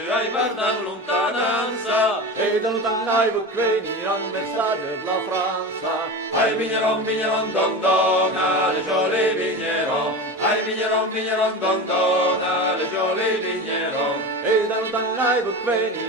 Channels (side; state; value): both; normal; correlation 0.26